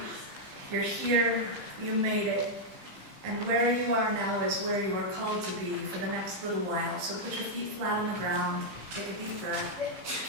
You're here, you made it. And where you are now is where you are called to be for the next little while. So put your feet flat on the ground, take a deep breath.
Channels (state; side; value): late; left; 15 ms